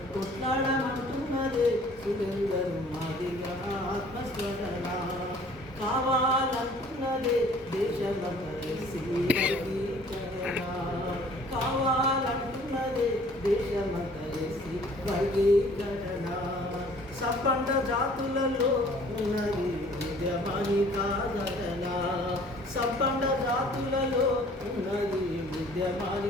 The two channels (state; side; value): normal; both; correlation 0.54